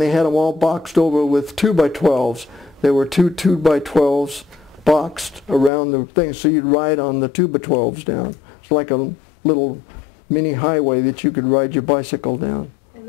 they had them all boxed over with 2x12s. There were two 2x12s boxed around the thing, so you'd ride on the 2x12s down. It's like a little mini highway that you could ride your bicycle down. And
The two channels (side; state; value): right; drops out; at 5.7 s